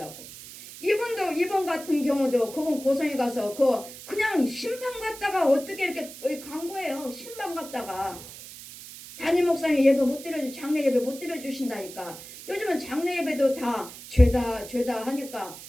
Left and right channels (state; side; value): noise; right; hiss, 15 dB below the sound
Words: 이번 같은 경우도 그분 고성에 가서 그냥 신방 갔다가 어떻게 이렇게 간 거예요. 신방 갔다가 부목사님 예배 못 드려주 장례 예배 못 드려주신다니까. 요즘은 장례 예배도 다 죄다 하니까